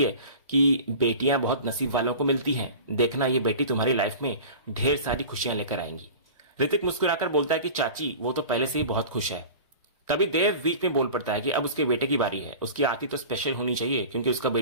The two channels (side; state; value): both; inverted; correlation -0.37